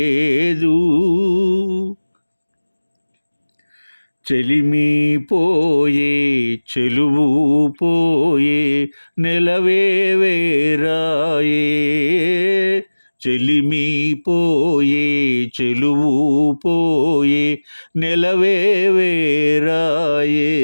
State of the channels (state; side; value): inverted; both; correlation -1.00